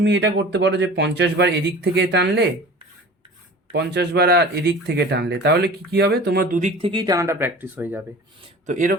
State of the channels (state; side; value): normal; both; correlation 0.40